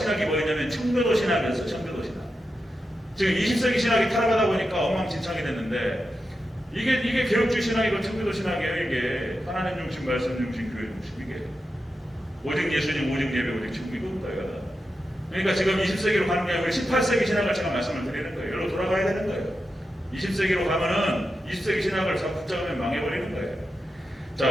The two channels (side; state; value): both; normal; correlation 0.89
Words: 뭐였냐면 청교도 신학이었어요. 청교도 신학. 지금 20세기 신학이 타락하다 보니까 엉망진창이 됐는데 이게 개혁주의 신학이고 청교도 신학이에요. 이게 하나님 중심, 말씀 중심, 교회 중심. 이게 오직 예수님, 오직 예배, 오직 지금 이겁니다. 그러니까 지금 20세기로 가는 게 아니고 18세기 신학을 제가 말씀을 드리는 거예요. 여기로 돌아가야 되는 거예요. 20세기로 가면은 20세기 신학을 자꾸 붙잡으면 망해버리는 거예요.